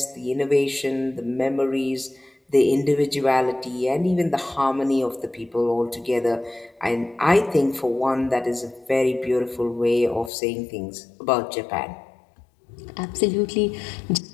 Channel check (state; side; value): drops out; right; at 10.3 s